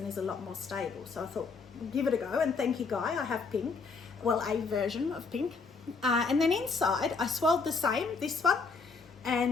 is a lot more stable. So I thought, give it a go, and thank you Guy, I have pink. Well, a version of pink. And then inside I swirled the same, this one,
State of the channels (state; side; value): quieter; right; 4.6 dB